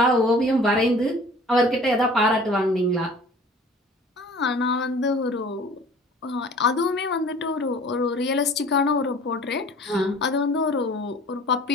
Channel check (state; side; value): normal; both; correlation 0.47